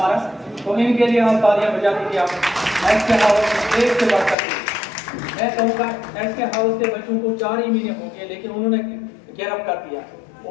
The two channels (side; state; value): right; drops out; at 4.4 s